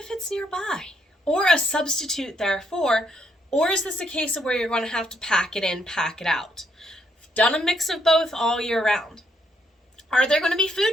it's nearby, or a substitute therefore, or is this a case of where you're going to have to pack it in, pack it out? Done a mix of both all year round. Are there going to be food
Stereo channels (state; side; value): normal; both; correlation 0.74